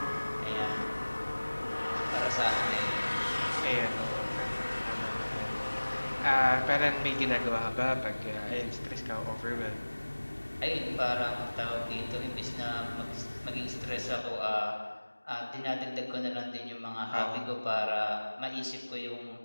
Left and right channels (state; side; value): inverted; both; correlation -1.00